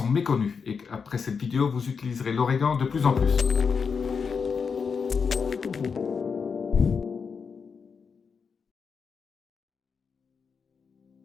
méconnus. Et après cette vidéo, vous utiliserez l'origan de plus en plus.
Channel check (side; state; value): right; quieter; 5.8 dB